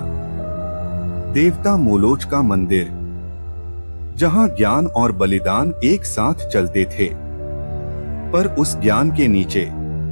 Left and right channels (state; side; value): inverted; both; correlation -1.00